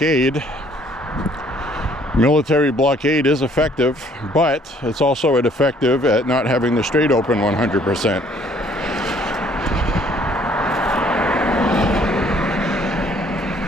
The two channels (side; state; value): both; normal; correlation 0.61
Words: Military blockade is effective, but it's also ineffective at not having the strait open 100%.